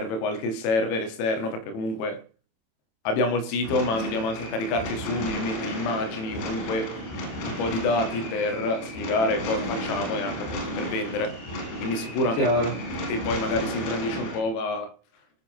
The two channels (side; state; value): right; late; 27 ms